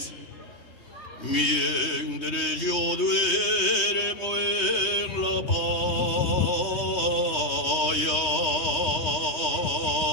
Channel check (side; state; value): right; late; 3.2 ms